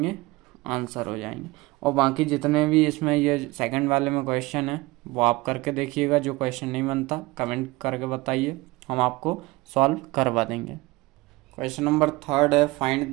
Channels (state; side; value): quieter; left; 21.8 dB